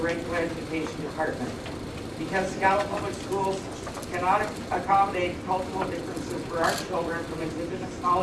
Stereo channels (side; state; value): both; identical; correlation 1.00